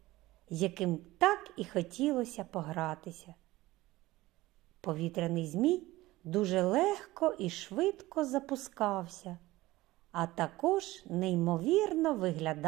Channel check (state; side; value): quieter; left; 18.3 dB